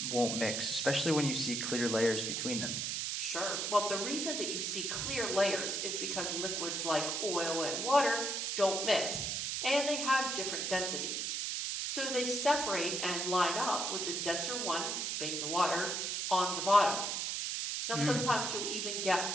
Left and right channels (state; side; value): noise; right; hiss, 1 dB below the sound